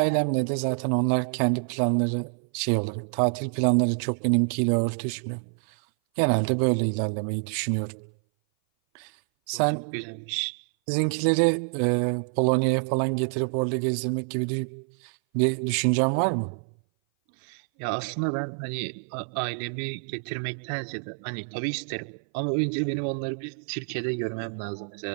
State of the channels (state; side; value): silent; left; 58 dB below the other